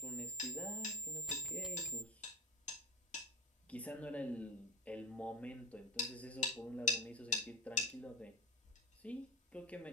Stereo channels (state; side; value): normal; both; correlation 0.17